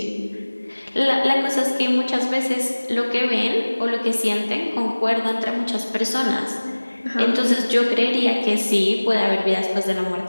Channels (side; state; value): both; inverted; correlation -1.00